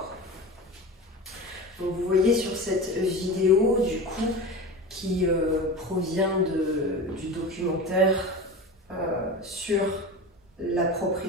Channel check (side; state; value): both; normal; correlation 0.29